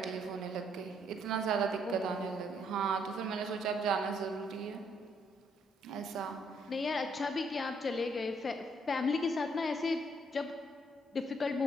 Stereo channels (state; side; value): normal; both; correlation 0.70